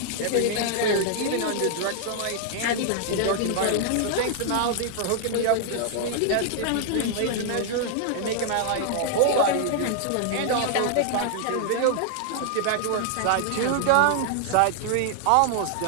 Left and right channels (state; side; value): different; both; correlation 0.00